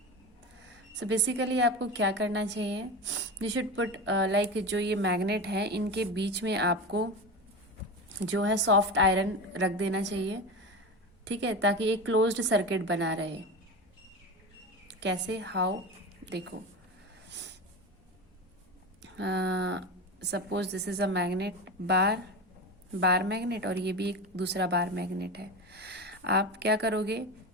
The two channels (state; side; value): normal; both; correlation 0.24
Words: So basically आपको क्या करना चाहिए, you should put like जो ये magnet है इनके बीच में आपको जो है सॉफ्ट आयरन रख देना चाहिए, ठीक है, ताकि एक क्लोज्ड सर्किट बना रहे. कैसे, हाउ, देखो, suppose this is a magnet, bar magnet, और ये भी एक दूसरा बार मैग्नेट है. आप क्या करोगे,